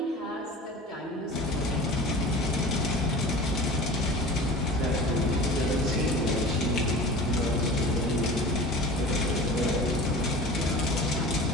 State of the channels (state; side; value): normal; both; correlation 0.38